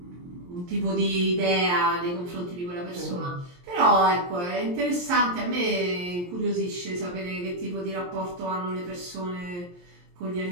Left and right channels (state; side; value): late; left; 23 ms